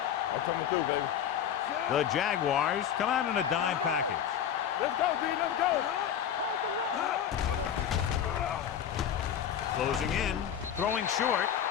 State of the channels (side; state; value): right; quieter; 9.3 dB